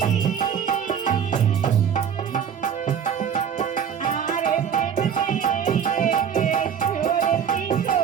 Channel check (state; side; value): quieter; left; 8.0 dB